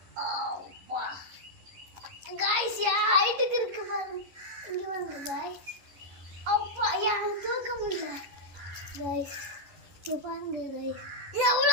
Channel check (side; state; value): left; late; 11 ms